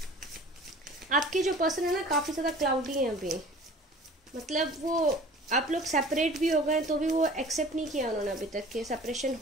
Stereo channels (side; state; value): both; normal; correlation 0.45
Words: आपके जो पर्सन है ना, काफ़ी ज़्यादा क्लाउडी है अभी। मतलब वो आप लोग सेपरेट भी हो गए तो भी वो एक्सेप्ट नहीं किया उन्होंने अभी तक कि सेपरेशन